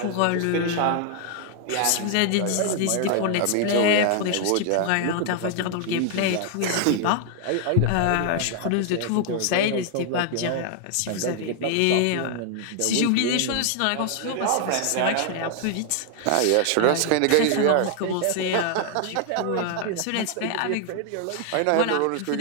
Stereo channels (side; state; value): both; different; correlation 0.00